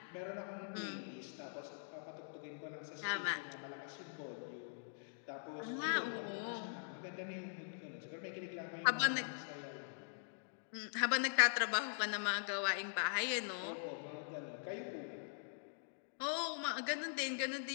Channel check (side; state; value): right; silent; digital silence